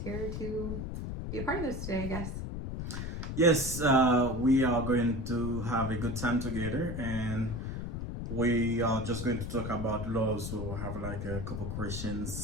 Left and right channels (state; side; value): noise; left; rumble, 5 dB below the sound